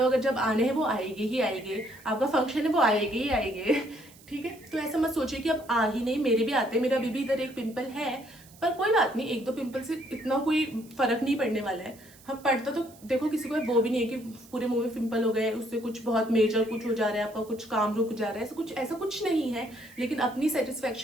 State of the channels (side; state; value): right; noise; hiss, 24 dB below the sound